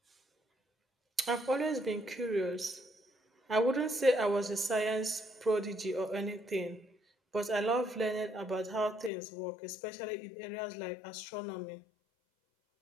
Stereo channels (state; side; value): drops out; right; at 9.1 s